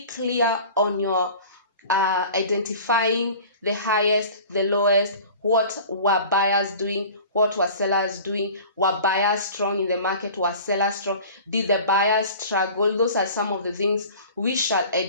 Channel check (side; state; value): both; inverted; correlation -0.42